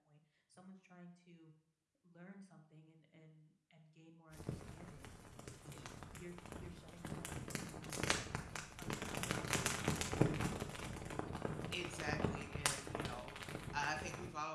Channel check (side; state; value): both; identical; correlation 1.00